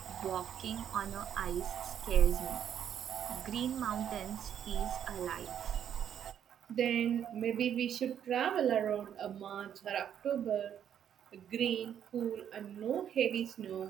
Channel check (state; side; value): quieter; left; 9.3 dB